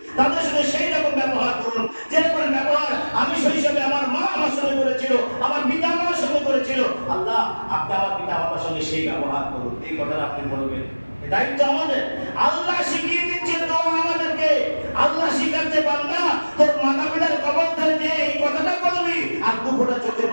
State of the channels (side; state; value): both; inverted; correlation -1.00